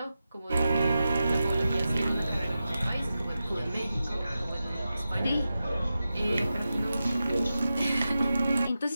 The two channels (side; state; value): both; inverted; correlation -0.91